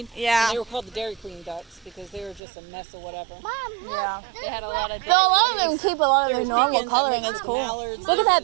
Yeah. And they were called the Dairy Queen ducks because they were just a mess of whatever. Mom, look. Yeah. They had a lot of. Though a lot of them keep a lot of their There's normal chickens that coloring. mix It's with cool. mallards. Look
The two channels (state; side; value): drops out; left; at 2.4 s